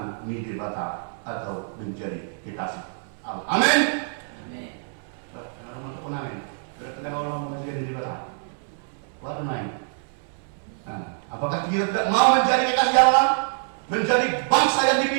Nidebata atau menjadi kekasih Allah. Amin. Amin. Amin. Berarti orang menjadi Nidebata. What am apakah kita tidak mau menjadi kekasih Allah, menjadi bangsa yang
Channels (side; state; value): left; silent; 60 dB below the other